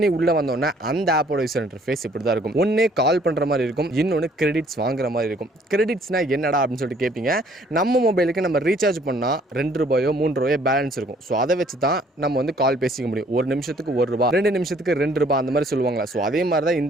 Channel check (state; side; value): normal; both; correlation 0.60